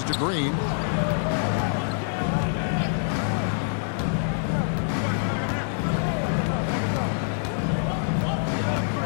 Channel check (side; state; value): right; silent; 60 dB below the other